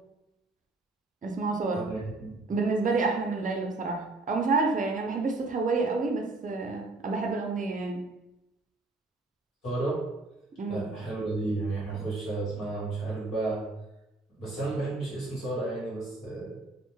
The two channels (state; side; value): quieter; left; 3.1 dB